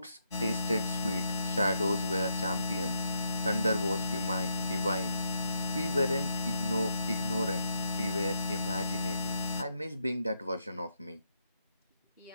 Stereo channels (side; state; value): both; inverted; correlation -0.80